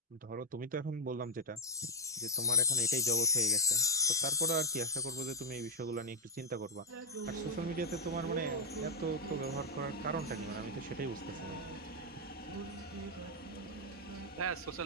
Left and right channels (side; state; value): both; normal; correlation -0.05